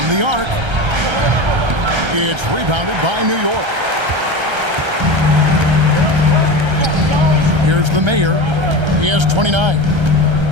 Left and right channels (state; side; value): late; left; 1.3 ms